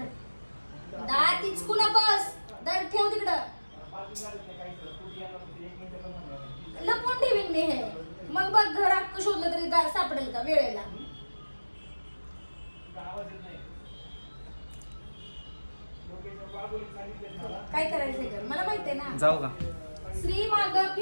दात इचकू नकोस. दर ठेव तिकडं. लपवून ठेवीन मी हे. मग बघ, घर अख्खं शोधलं तरी सापडेल का वेळेला? काय करायचंय कर, मला माहितीये ना. जाऊ का? श्री माग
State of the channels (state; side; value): inverted; both; correlation -1.00